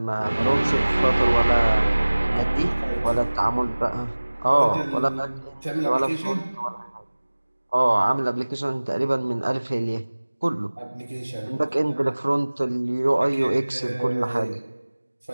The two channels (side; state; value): both; inverted; correlation -1.00